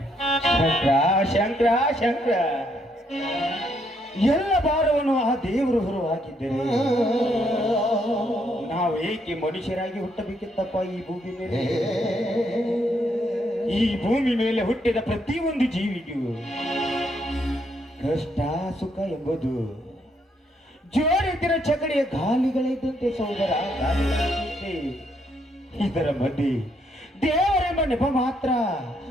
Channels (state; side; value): normal; both; correlation 0.73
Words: ಶಂಕರ ಶಂಕರ, ಎಲ್ಲ ಭಾರವನ್ನು ಆ ದೇವರು ಹೊರ ಹಾಕಿದ್ದರೆ ನಾವು ಏಕೆ ಮನುಷ್ಯರಾಗಿ ಹುಟ್ಟಬೇಕಿತ್ತಪ್ಪ ಈ ಭೂಮಿ ಮೇಲೆ? ಈ ಭೂಮಿ ಮೇಲೆ ಹುಟ್ಟಿದ ಪ್ರತಿಯೊಂದು ಜೀವಿಗೂ ಕಷ್ಟ ಸುಖ ಎಂಬುದು ಜೋಡಿತಿರ ಚಕಡಿಯ ಗಾಲಿಗಳಿದ್ದಂತೆ ಸಹೋದರ, ಗಾಲಿಗಳಿದ್ದಂತೆ. ಇದರ ಮಧ್ಯೆ ದೇವರೆಂಬ ನೆಪ ಮಾತ್ರ.